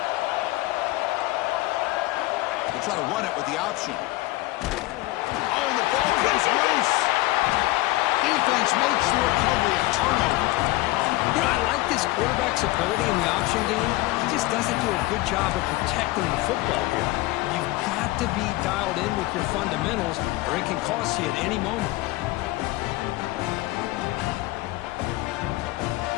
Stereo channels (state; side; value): quieter; right; 19.3 dB